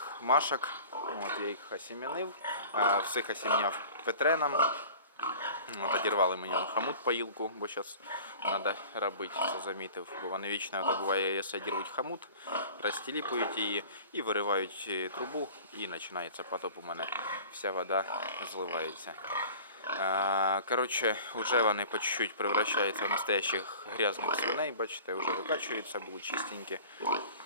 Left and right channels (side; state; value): both; inverted; correlation -0.42